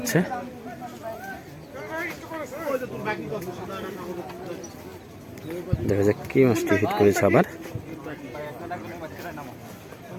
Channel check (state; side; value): identical; both; correlation 1.00